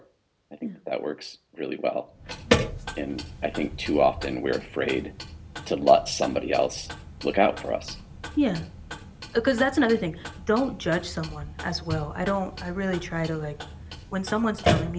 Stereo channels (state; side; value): identical; both; correlation 1.00